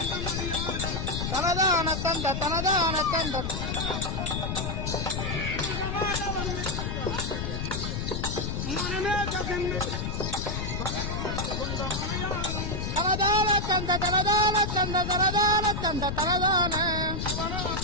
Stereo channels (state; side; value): noise; left; rumble, 2 dB below the sound